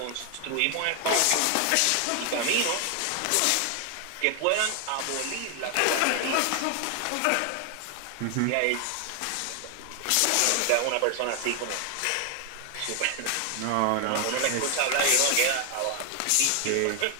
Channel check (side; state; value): both; different; correlation 0.00